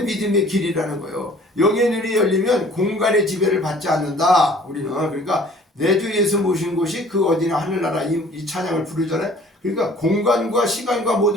믿음의 길이라는 거예요. 영의 눈이 열리면 공간의 지배를 받지 않는다. 우리는 그러니까 내 주 예수 모신 곳이 그 어디나 하늘나라 이 찬양을 부르잖아요. 그러니까 공간과 시간과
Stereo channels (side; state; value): both; normal; correlation 0.52